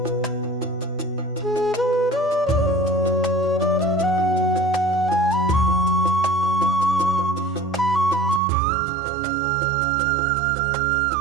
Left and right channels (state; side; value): drops out; left; at 8.4 s